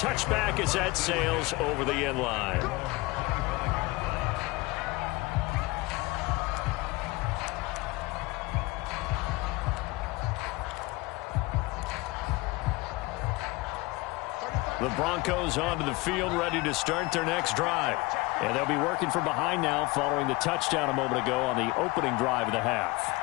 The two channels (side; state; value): right; quieter; 22.6 dB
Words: as that sails over the end line. The Broncos onto the field, ready to start their next drive. And they'll be working from behind now following the touchdown a moment ago on the opening drive of the half.